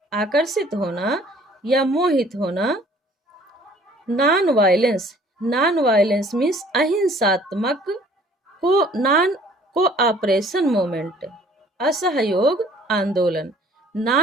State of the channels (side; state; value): both; normal; correlation 0.55